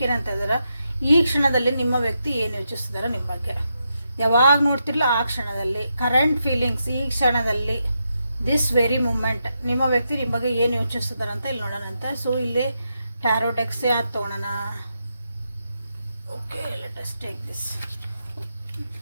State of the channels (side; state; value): both; inverted; correlation -0.84